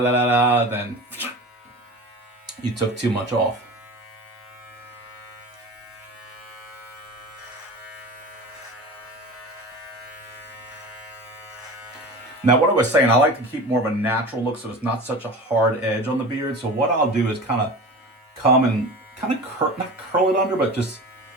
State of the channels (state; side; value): normal; both; correlation 0.33